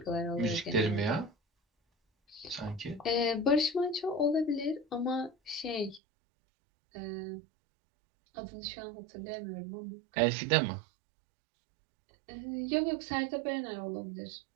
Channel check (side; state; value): left; drops out; at 6.0 s